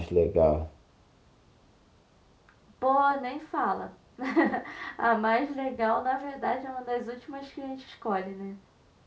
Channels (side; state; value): both; identical; correlation 1.00